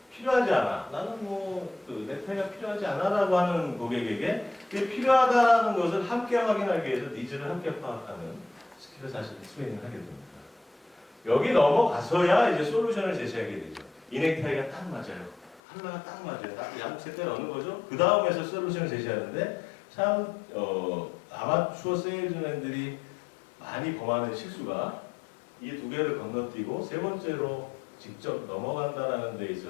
필요하지 않아. 나는 넥타이가 필요하지 않아라고 하는 고객에게 그게 필요하다라는 것을 함께 확인하기 위해서 니즈를 함께 파악하는 스킬을 사실 트레이닝하게 됩니다. 여기 넘어가서야 이제 솔루션을 제시하게 되죠. 이 넥타이가 딱 맞아요. 컬러가 딱 맞아요. 딱 양쪽 색깔 어느 거죠? 그 다음에서 솔루션을 제시하는데 참 아마추어 세일즈맨들이 많이 범하는 실수가 이 2개를 건너뛰고 3번째로 직접 넘어간다라는 데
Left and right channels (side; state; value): right; drops out; at 15.6 s